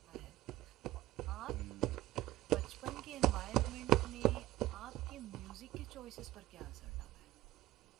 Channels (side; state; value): left; quieter; 16.1 dB